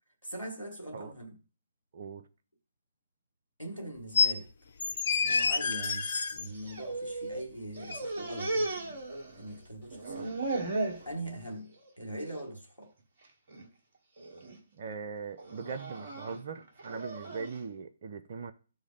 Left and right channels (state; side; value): inverted; both; correlation -0.74